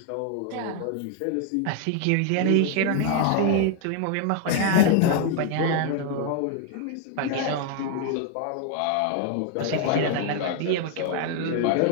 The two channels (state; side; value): different; both; correlation 0.00